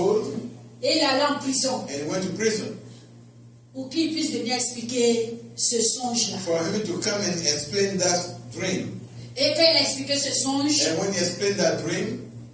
et il est allé en prison and he went to prison pour qu'il puisse venir expliquer ce songe-là. for him to come and explain that dream. Et quand il a expliqué ce songe, And when he explained that dream,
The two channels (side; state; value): both; identical; correlation 1.00